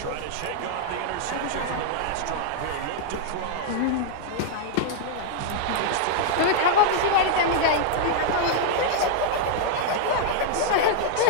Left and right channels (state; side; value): different; both; correlation -0.01